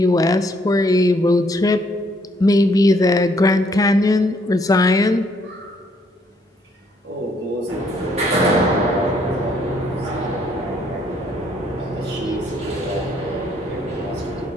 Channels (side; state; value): both; normal; correlation 0.68